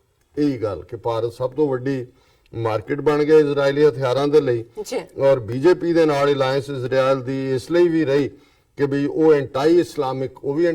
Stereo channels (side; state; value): both; identical; correlation 1.00